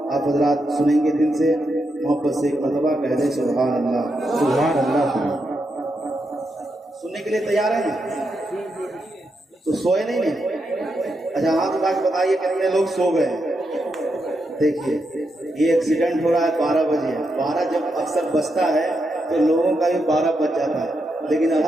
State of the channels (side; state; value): both; normal; correlation 0.84